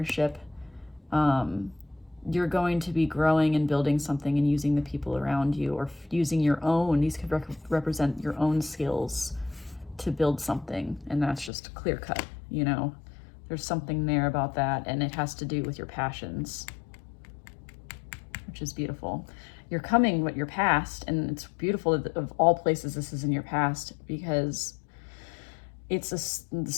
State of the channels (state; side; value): drops out; right; at 11.5 s